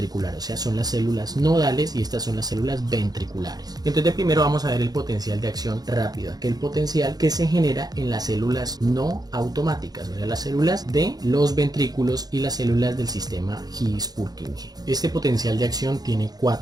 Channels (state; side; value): late; left; 0.19 ms